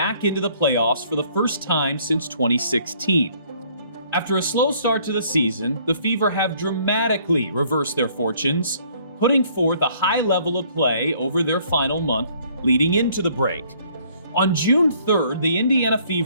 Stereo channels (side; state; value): both; inverted; correlation -0.61